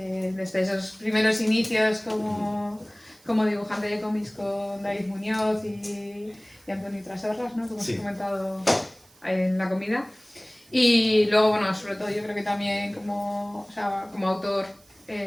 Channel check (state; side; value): noise; right; hiss, 28 dB below the sound